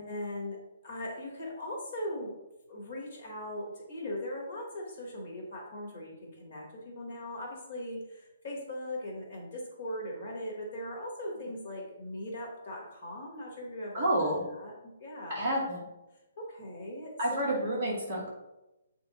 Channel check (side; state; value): both; inverted; correlation -0.62